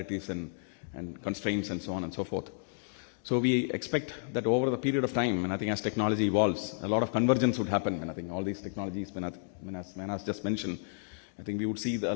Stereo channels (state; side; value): silent; right; digital silence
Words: and constraints and so on and so forth. So we expect that over the period of time, and I think as technology evolves, a lot of convergence would happen. And I think all these technologies, as Manas just mentioned, I think we would see a